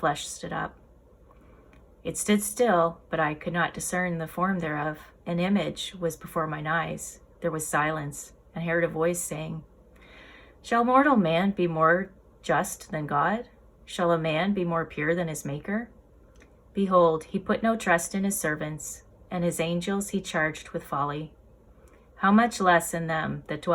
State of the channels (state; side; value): identical; both; correlation 1.00